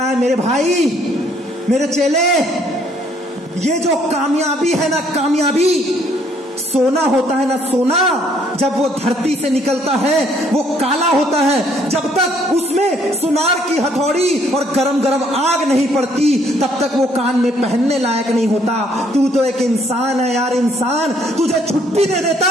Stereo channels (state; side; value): normal; both; correlation 0.65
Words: है मेरे भाई, मेरे चेले, ये जो कामयाबी है ना, कामयाबी सोना होता है ना, सोना जब वो धरती से निकलता है वो काला होता है। जब तक उसमें सुनार की हथौड़ी और गरम गरम आग नहीं पड़ती तब तक वो कान में पहनने लायक नहीं होता। तू तो एक इंसान है यार, इंसान। तुझे छुट्टी दे